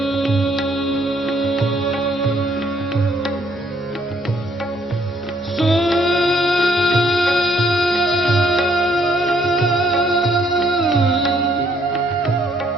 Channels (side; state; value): both; normal; correlation 0.68